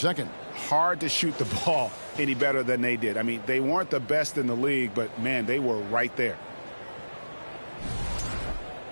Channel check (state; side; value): inverted; both; correlation -1.00